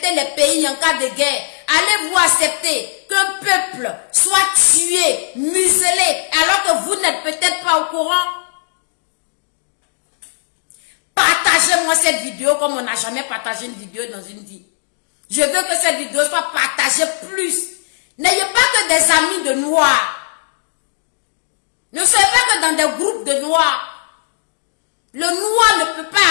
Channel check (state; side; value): silent; right; digital silence